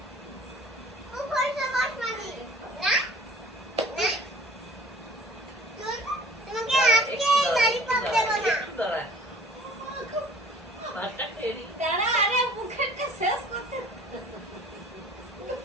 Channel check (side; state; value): both; normal; correlation 0.49